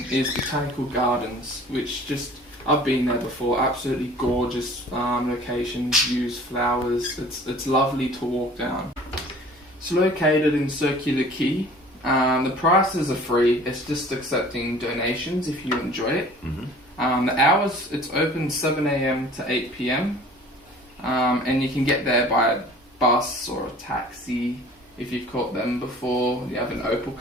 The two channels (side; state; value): both; normal; correlation 0.47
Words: is Botanical Gardens, which I've been there before. Absolutely gorgeous locations, views, flowers. It's lovely to walk down. It's located in Circular Quay. The prices are free. It's just accepting donations if you enjoy it. The hours, it's open 7 a.m. to 8 p.m. And you can get there by a bus or a taxi if you've caught them before. You have an Opal